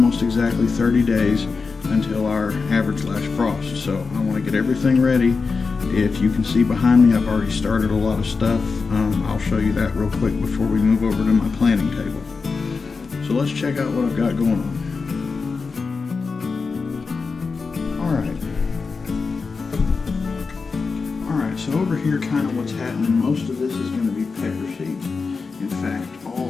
exactly 30 days until our average last frost. So I want to get everything ready. If you can see behind me, I've already started a lot of stuff. I'll show you that real quick before we move over to my planting table. So let's check out what I've got going on. Alright, so over here kind of what's happening, most of this is going to be pepper seeds. In fact,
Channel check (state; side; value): quieter; right; 4.6 dB